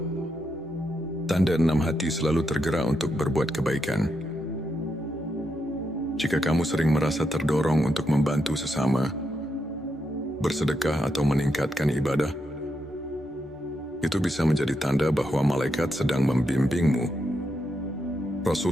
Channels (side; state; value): both; normal; correlation 0.82